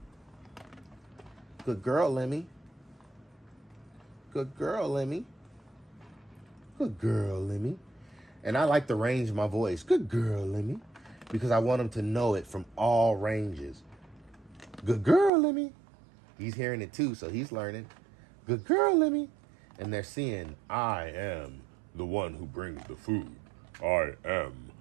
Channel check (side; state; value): left; drops out; at 15.3 s